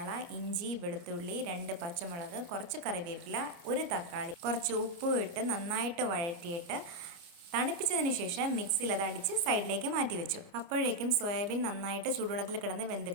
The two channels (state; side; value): late; left; 29 ms